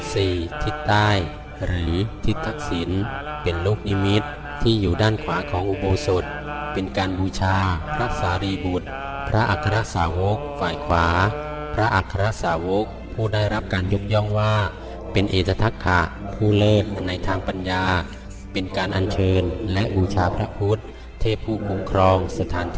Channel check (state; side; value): identical; both; correlation 1.00